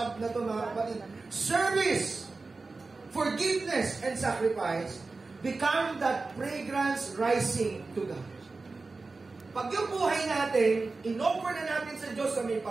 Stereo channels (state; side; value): quieter; left; 3.8 dB